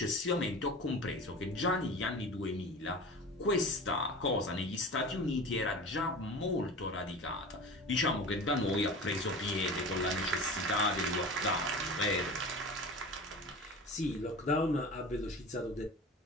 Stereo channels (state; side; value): normal; both; correlation 0.34